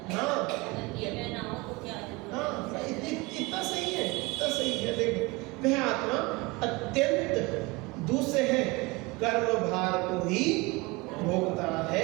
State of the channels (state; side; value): quieter; left; 24.4 dB